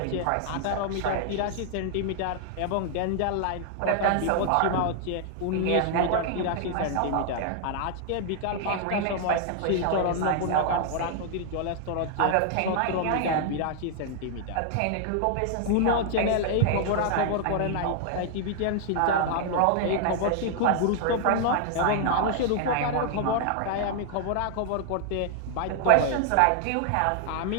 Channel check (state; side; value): different; both; correlation 0.00